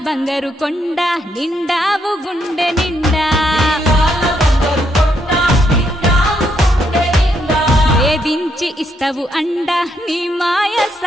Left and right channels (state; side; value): normal; both; correlation 0.76